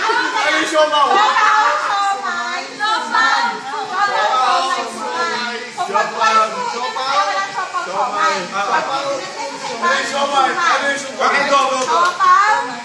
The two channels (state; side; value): identical; both; correlation 1.00